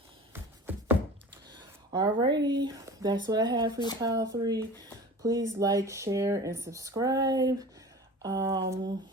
Alrighty, that's what I have for you, pile 3. Please like, share, and subscribe.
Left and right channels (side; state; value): both; normal; correlation 0.39